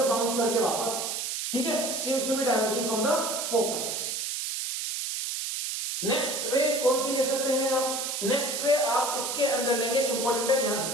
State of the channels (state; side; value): noise; right; hiss, 3 dB below the sound